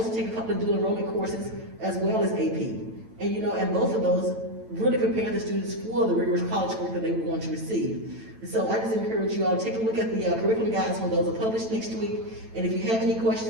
to take a couple of dual enrollment courses as well as AP. And both of those really prepare the students for the rigorous college work that they would want to receive. And so I just encourage you all to take a look at the curriculum guides when those are published next week. And if you have any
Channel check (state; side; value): late; left; 9.0 ms